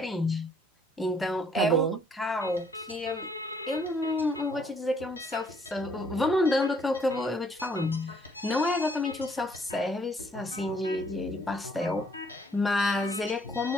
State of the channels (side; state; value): both; normal; correlation 0.66